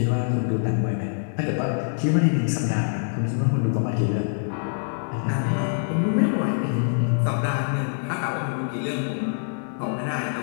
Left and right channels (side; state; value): right; silent; digital silence